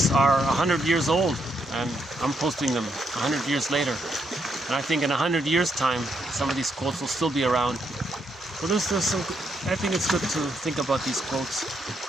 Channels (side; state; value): both; normal; correlation 0.77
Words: are 100 years old, and I'm posting them 100 years later. And I think in 100 years' time, some of these quotes will still be around. So there's some. I think it's good to think about these quotes.